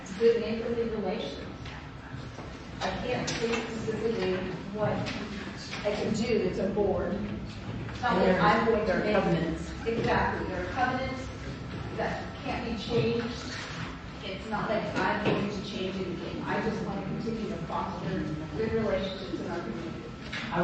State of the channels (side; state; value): both; identical; correlation 1.00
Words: good neighborly relations. I can't say specifically what I can do. It's a board. It's not like I'm going to make covenants. Exactly, there are covenants that can't be changed. It's not like I'm going to change anything. I just want to continue to foster good relationships in our community. I